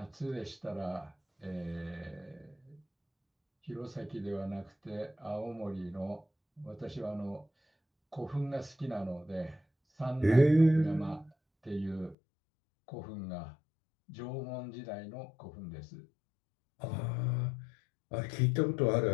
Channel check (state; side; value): drops out; right; at 12.2 s